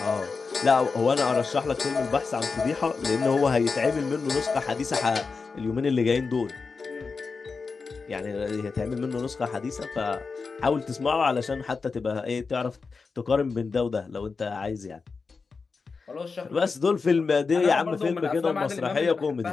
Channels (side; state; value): right; quieter; 4.7 dB